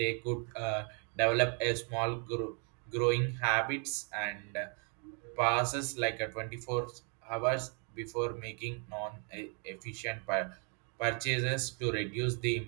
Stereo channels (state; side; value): quieter; left; 39.2 dB